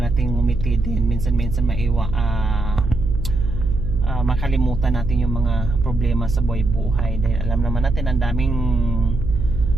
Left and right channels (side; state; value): right; noise; hum, 4 dB below the sound